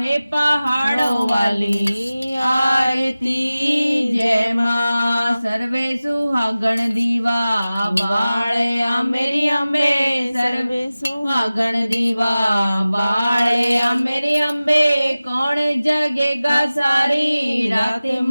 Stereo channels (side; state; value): both; inverted; correlation -0.97